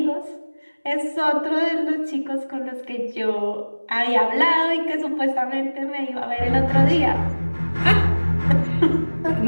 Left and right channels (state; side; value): inverted; both; correlation -1.00